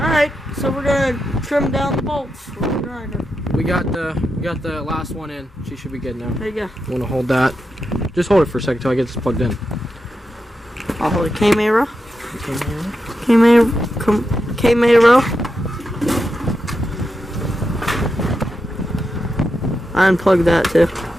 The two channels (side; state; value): both; normal; correlation 0.87